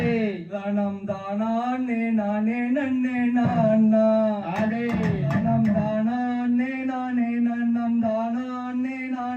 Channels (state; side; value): identical; both; correlation 1.00